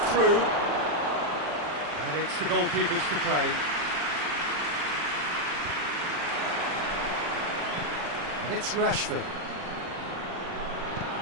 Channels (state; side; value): late; left; 40 ms